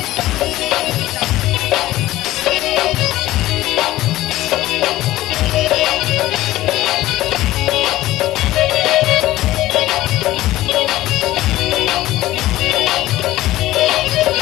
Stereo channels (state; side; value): quieter; right; 16.1 dB